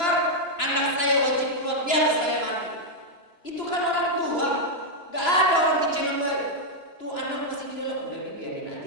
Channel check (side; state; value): right; late; 2.9 ms